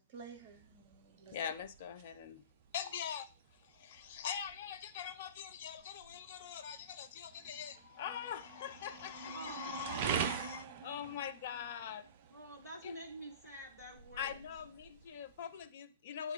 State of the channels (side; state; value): both; inverted; correlation -0.36